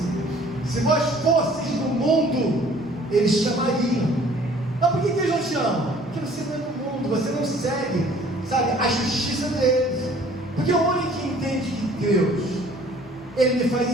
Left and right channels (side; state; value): both; normal; correlation 0.54